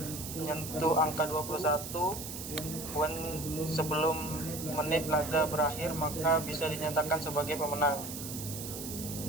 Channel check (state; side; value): noise; right; hiss, 8 dB below the sound